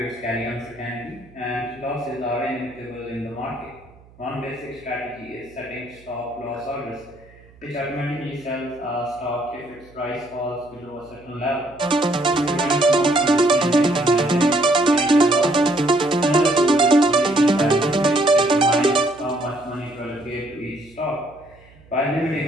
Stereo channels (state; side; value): noise; right; hum, 26 dB below the sound